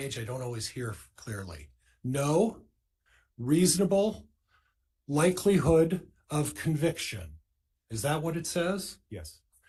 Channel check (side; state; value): both; identical; correlation 1.00